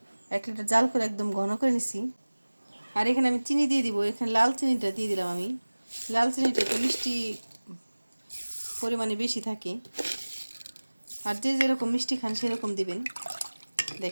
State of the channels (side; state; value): both; inverted; correlation -1.00